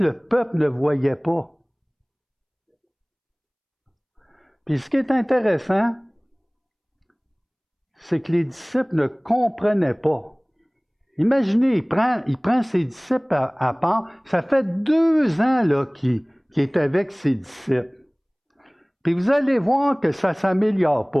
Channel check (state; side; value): identical; both; correlation 1.00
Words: le peuple ne voyait pas? Puis ce qui est intéressant, c'est que les disciples ne comprenaient pas. Imaginez, il prend ses disciples à part. Ça fait 2 ans là, qu'il est avec ses disciples. Puis vous allez voir que ça ne s'améliore